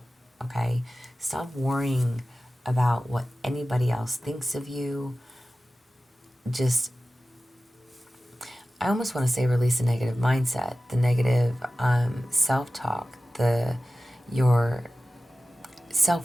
okay? Stop worrying about what anybody else thinks of you. Just, I almost want to say release the negative mindset, the negative self-talk, your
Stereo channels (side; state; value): both; normal; correlation 0.95